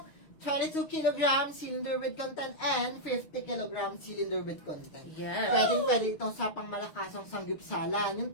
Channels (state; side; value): late; right; 6.4 ms